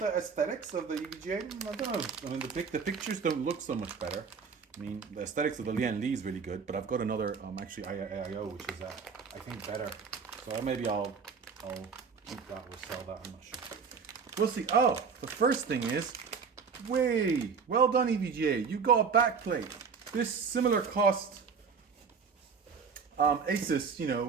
aesthetics of the EVGA. I don't know. I mean, the pictures don't look so much better. I mean, the aesthetics of the Lian Li is really good, but I've got another, actually AIO, which is, I think, better. So maybe I'll keep that or sell that. I'm not sure. We'll see. Oh, the first thing is, well done, EVGA. You got a backplate. This similar cost Asus,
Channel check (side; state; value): left; quieter; 5.7 dB